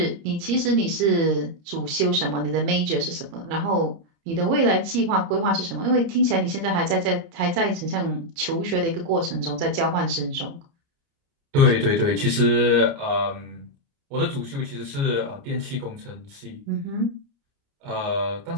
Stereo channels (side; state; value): left; late; 30 ms